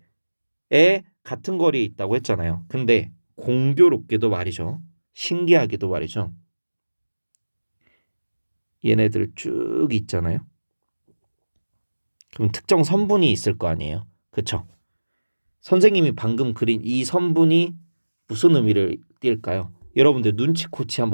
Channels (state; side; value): inverted; both; correlation -1.00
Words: 같은 거리에 있다고 했잖아요. 근데 공교롭게도 말이죠. 신기하게도 말이죠. 얘네들 쭉 있잖아요. 그럼 특정 선분이 있을 거 아니에요. 그쵸? 선생님이 방금 그린 이 선분이 무슨 의미를 띌까요? 여러분들 눈치코치